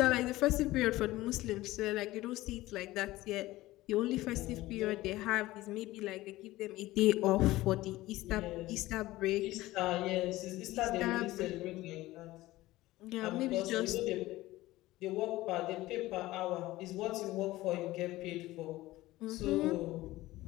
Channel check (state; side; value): quieter; right; 17.6 dB